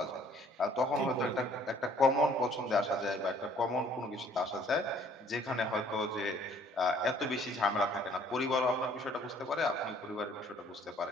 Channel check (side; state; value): both; normal; correlation 0.59